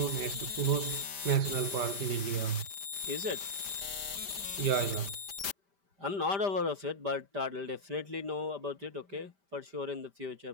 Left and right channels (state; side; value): late; left; 5.1 ms